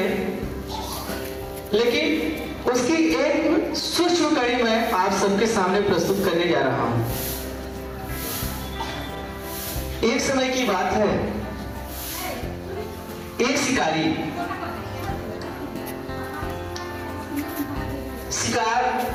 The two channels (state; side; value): identical; both; correlation 1.00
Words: लेकिन उसकी एक सूक्ष्म कड़ी मैं आप सबके सामने प्रस्तुत करने जा रहा हूं। एक समय की बात है, एक शिकारी शिकार